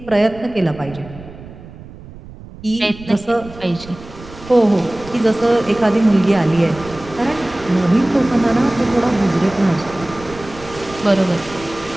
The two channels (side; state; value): right; noise; rumble, 17 dB below the sound